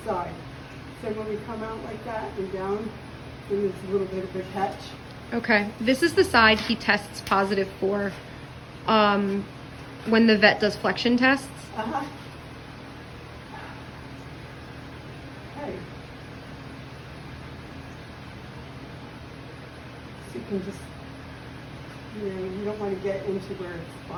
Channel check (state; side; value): identical; both; correlation 1.00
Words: side. So when we come out like that and down, then there's a little bit of a catch. Okay. This is the side he tests positive for when the vet does flexion tests. Uh-huh. Okay. So you can just, you don't want to get into where it's